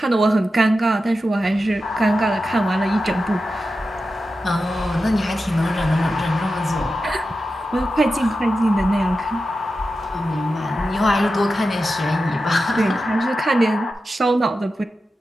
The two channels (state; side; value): normal; both; correlation 0.91